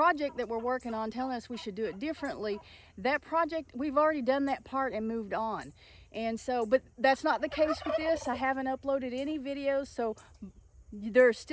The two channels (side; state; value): both; identical; correlation 1.00